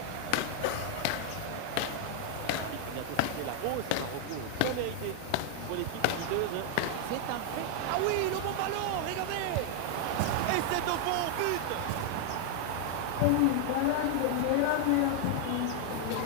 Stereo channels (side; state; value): both; different; correlation 0.00